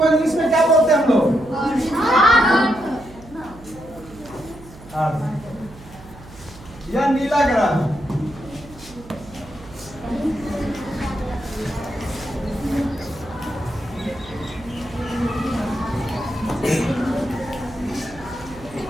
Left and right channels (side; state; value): right; noise; hum, 19 dB below the sound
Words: इंग्लिश में क्या बोलते हैं हम लोग? यह नीला ग्रह है।